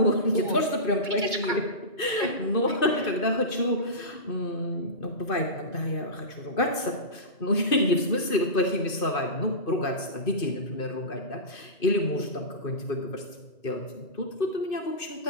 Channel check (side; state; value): right; late; 2.5 ms